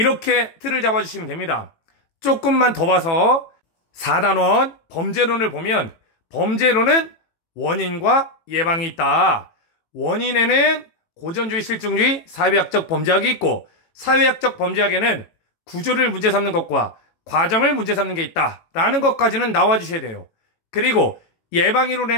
틀을 잡아주시면 됩니다. 조금만 더 봐서 4단원 범죄론을 보면, 범죄론은 원인과 예방이 있다. 원인에는 고전주의, 실증주의, 사회학적 범죄학이 있고, 사회학적 범죄학에는 구조를 문제 삼는 것과 과정을 문제 삼는 게 있다 라는 것까지는 나와주셔야 돼요. 그리고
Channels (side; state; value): right; late; 18 ms